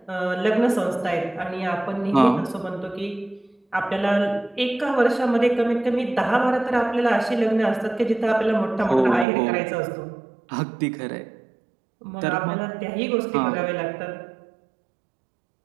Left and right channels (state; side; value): drops out; left; at 9.2 s